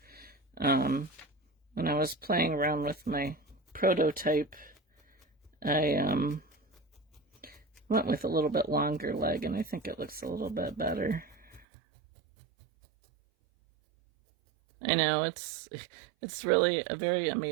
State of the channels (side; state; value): left; drops out; at 11.7 s